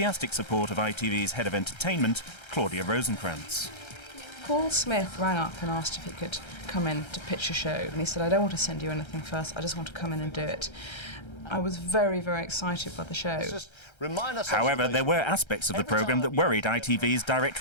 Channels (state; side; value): late; right; 1.3 ms